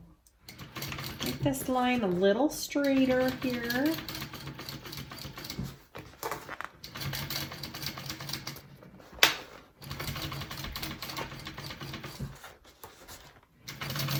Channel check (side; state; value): both; identical; correlation 1.00